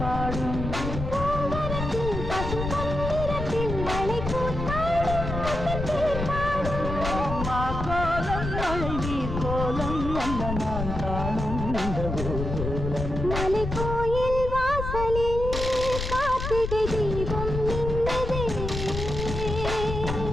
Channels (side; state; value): left; noise; rumble, 5 dB below the sound